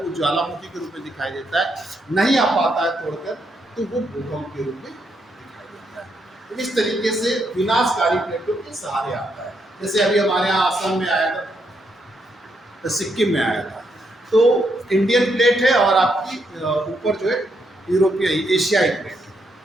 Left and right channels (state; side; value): normal; both; correlation 0.78